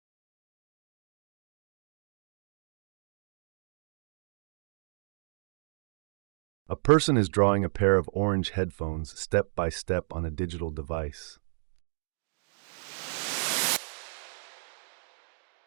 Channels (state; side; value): silent; left; digital silence